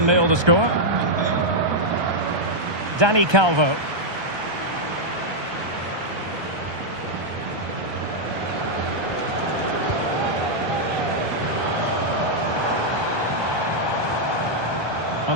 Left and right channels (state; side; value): late; left; 1.2 ms